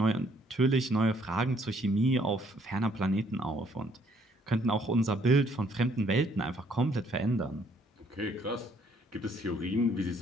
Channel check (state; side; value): normal; both; correlation 0.65